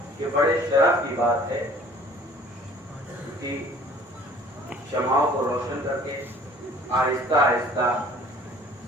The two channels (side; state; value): both; normal; correlation 0.52